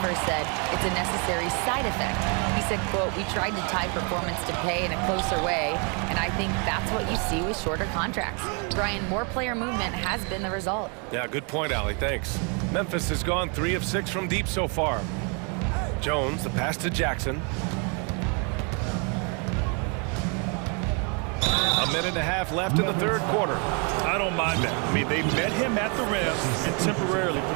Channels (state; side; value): quieter; left; 35.8 dB